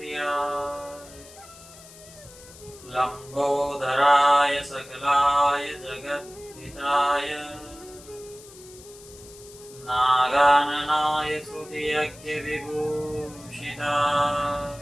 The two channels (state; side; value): noise; left; hiss, 20 dB below the sound